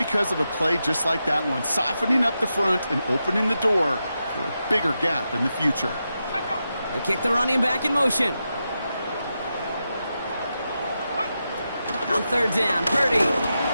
of a play just like that one, softening up the front and opening the door for a bigger gap in the future. They kick the running back in motion. On 3rd down, Purdy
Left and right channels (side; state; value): both; inverted; correlation -0.88